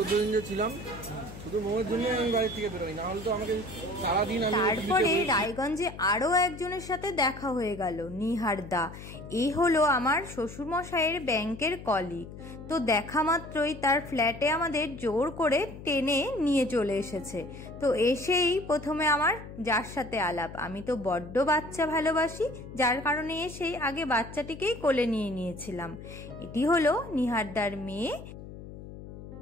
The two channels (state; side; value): noise; left; hum, 13 dB below the sound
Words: দিন যে ছিলাম শুধু মোমের জন্য আমি বাড়ি থেকে বেরোই, না হলে তো আমাকে সারাদিন। তারপরে রায়গঞ্জে আরো একজনের সাথে দেখা হয়ে গেল, নিহার দা। এই হলো আমার শ্বশুর মশাইয়ের ব্যাংকের কলিগ। তো দেখা মাত্রই তার ফ্ল্যাটে আমাদের জোর করে টেনে নিয়ে চলে এসেছে। তো এসেই প্রথমে আমার যার সাথে আলাপ। আমি তো বড্ড বাচ্চা ভালোবাসি, যার কারণে এসেই আগে বাচ্চাটিকেই কোলে নিয়ে নিয়েছিলাম। এটি হলো নিহারদার মেয়ে,